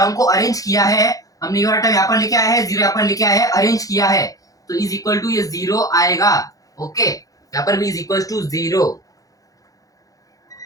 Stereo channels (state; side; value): late; right; 0.17 ms